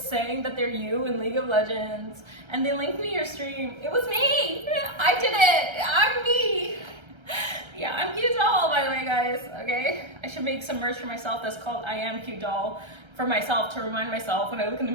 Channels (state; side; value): late; left; 1.3 ms